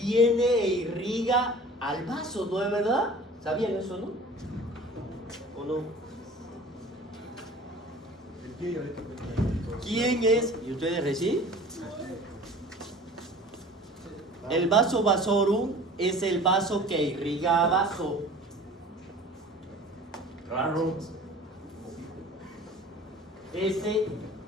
e irriga al vaso, ¿no es verdad? ¿Sabían eso, no? ¿O no? El pie diabético. ¿Quién es? ¿Y ustedes recién? El vaso vasorum es el vaso que irriga a vaso. Raro. Ese,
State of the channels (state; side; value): normal; both; correlation 0.44